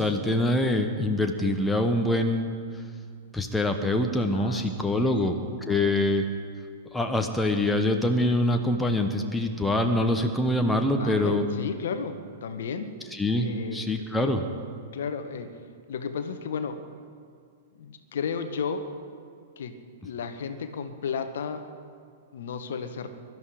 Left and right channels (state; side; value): normal; both; correlation 0.43